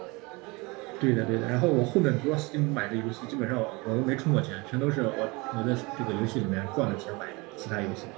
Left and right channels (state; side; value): quieter; left; 25.8 dB